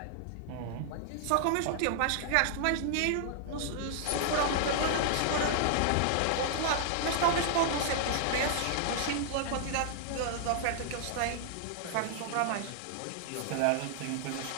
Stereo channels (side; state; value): both; different; correlation -0.01